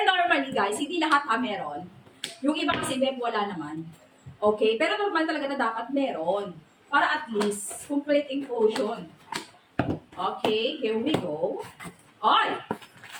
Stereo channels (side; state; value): both; identical; correlation 1.00